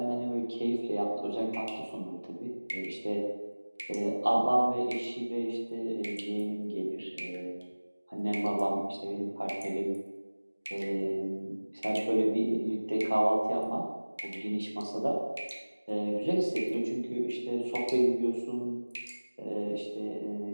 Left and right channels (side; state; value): both; inverted; correlation -1.00